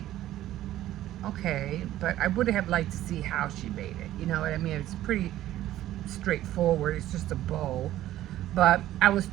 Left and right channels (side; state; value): left; quieter; 13.8 dB